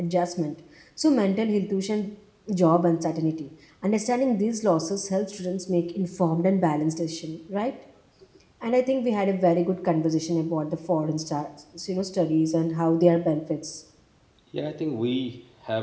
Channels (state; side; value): identical; both; correlation 1.00